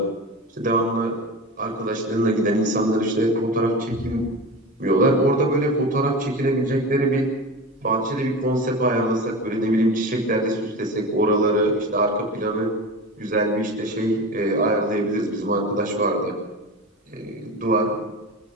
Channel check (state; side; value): normal; both; correlation 0.28